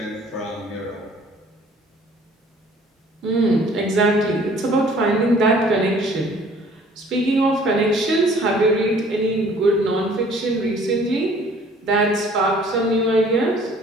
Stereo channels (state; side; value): normal; both; correlation 0.55